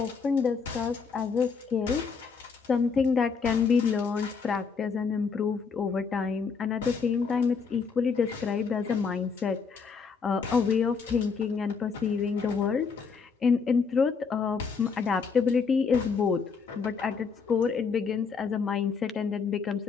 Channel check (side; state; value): right; quieter; 5.5 dB